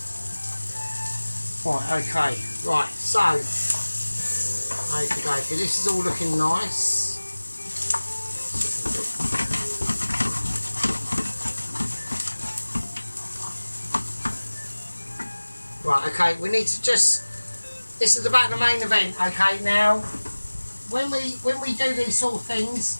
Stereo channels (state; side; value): inverted; both; correlation -1.00